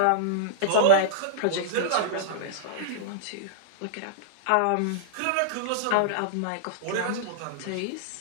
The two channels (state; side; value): different; both; correlation -0.02